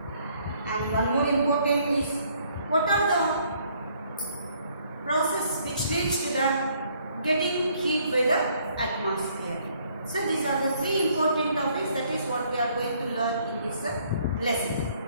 and one more important is what are the process which leads to the getting heat by the atmosphere. So these are the three important topics, that is what we are going to learn in this lesson.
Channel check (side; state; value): both; inverted; correlation -0.65